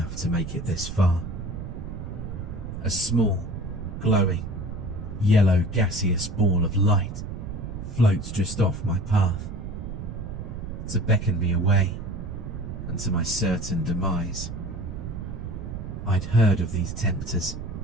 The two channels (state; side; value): noise; right; rumble, 7 dB below the sound